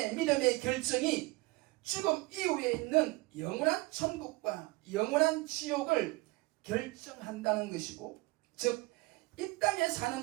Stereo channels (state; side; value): quieter; left; 22.5 dB